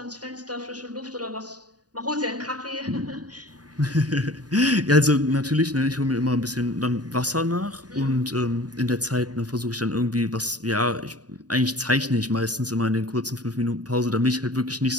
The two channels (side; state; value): left; late; 0.68 ms